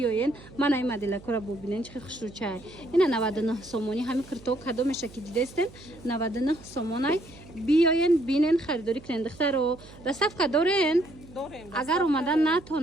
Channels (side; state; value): right; noise; hum, 20 dB below the sound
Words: мана ин моделакора бубинен чихи хушручай ина 99 сомони ҳами кирто кадо меша ки дидестен 99 сомонай биёен бинен харидорӣ кунен духтаро доставка дорен агар омадан